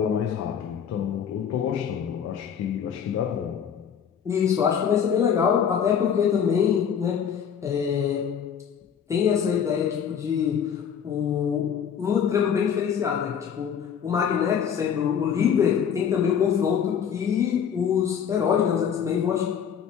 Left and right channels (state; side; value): quieter; right; 7.9 dB